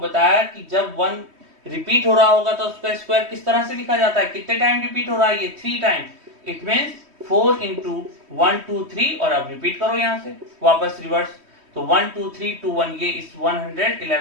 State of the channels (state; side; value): late; left; 3.1 ms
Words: कि जब 1 रिपीट हो रहा होगा तो उसका स्क्वायर किस तरह से लिखा जाता है, कितने टाइम रिपीट हो रहा है, ये 3 टाइम, इट मींस 4 इंटू 1 2 3, और अब रिपीट करो यहां से वापस रिवर्स, तो 1 2 3 2 1, ये इस